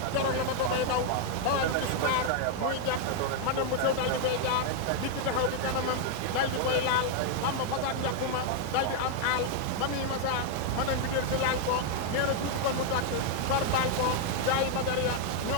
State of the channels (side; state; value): both; different; correlation 0.00